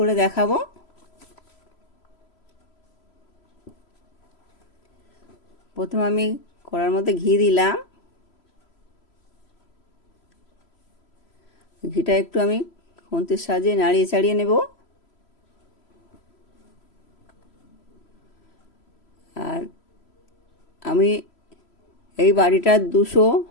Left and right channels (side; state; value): right; late; 3.0 ms